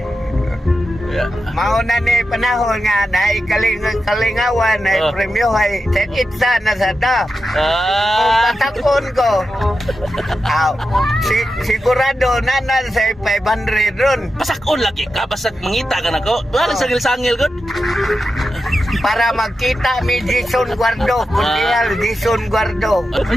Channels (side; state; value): both; normal; correlation 0.90